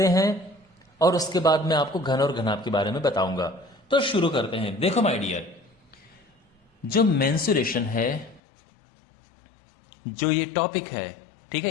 हैं, और उसके बाद मैं आपको घन और घनाभ के बारे में बताऊंगा। तो शुरू करते हैं। देखो माय डियर, जो मेंसुरेशन है, जो ये टॉपिक है, ठीक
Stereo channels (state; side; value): drops out; right; at 8.4 s